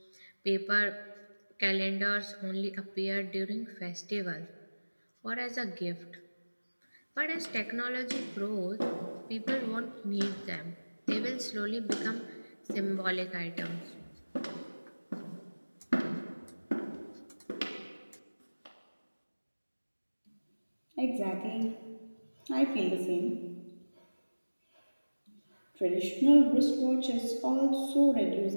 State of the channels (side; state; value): both; inverted; correlation -1.00